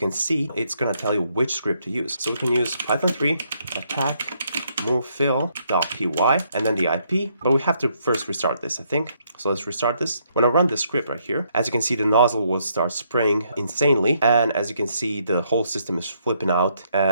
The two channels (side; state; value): both; inverted; correlation -0.73